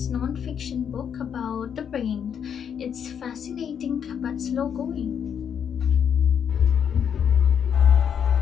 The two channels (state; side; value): quieter; right; 8.0 dB